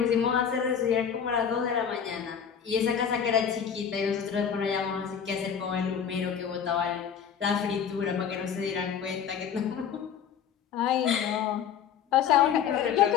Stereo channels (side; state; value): right; quieter; 7.9 dB